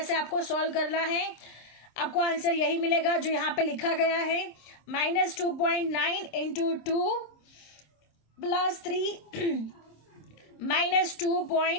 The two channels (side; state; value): right; late; 26 ms